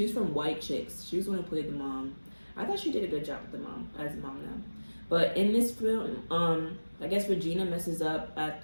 was from White Chicks. She was the one who played the mom. I thought she did a good job with the mom, as the mom now. But in this film, I guess Regina messes up at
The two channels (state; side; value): inverted; both; correlation -1.00